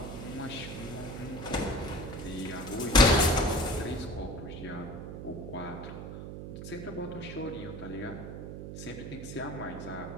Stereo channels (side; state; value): right; noise; hum, 8 dB below the sound